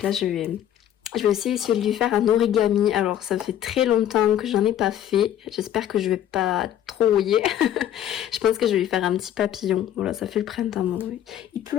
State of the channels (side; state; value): right; quieter; 11.0 dB